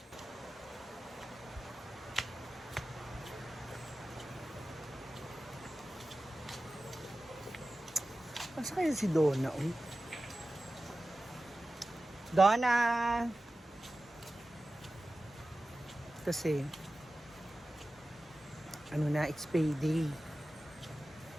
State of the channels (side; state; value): both; normal; correlation 0.95